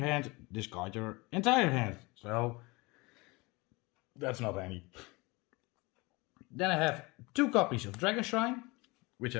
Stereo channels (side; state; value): right; quieter; 25.0 dB